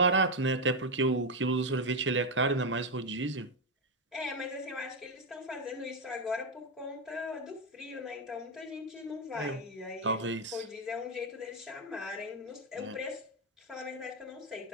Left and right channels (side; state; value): both; normal; correlation 0.06